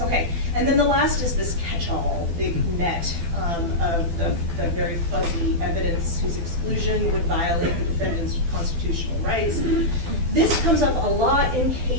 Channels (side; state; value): left; late; 12 ms